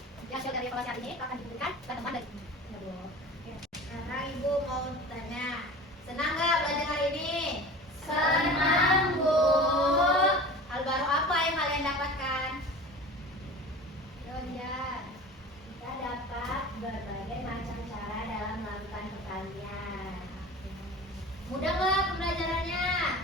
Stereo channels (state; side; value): normal; both; correlation 0.37